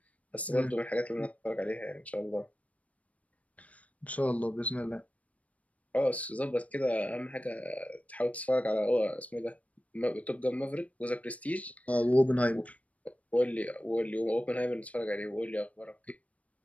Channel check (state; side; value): late; right; 0.067 ms